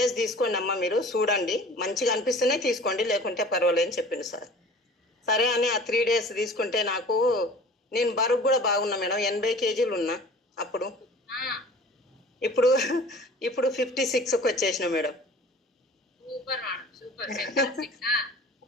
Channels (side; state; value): both; normal; correlation 0.45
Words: తీసుకోండి అమ్మ, మీరు చూడండి మంచిగా అనిపిస్తేనే తీసుకోండి, లేకుంటే పర్వాలేదని చెప్పింది సార్. సరే అని ఆ 3 days తీసుకుంటే నాకు నేను బరువు కూడా బాగున్నా మేడం, 80 kgs ఉన్నా అప్పుడు. ఇప్పుడు ఇప్పుడు 56కి వచ్చేసిన మేడం.